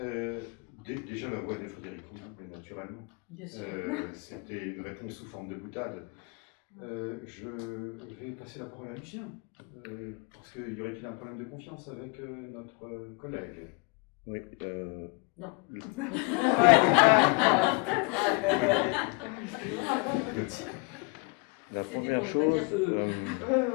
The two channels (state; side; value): quieter; right; 29.7 dB